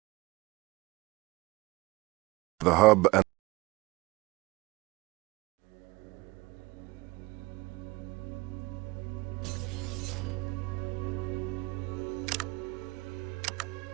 The hub and...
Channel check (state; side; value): quieter; left; 22.5 dB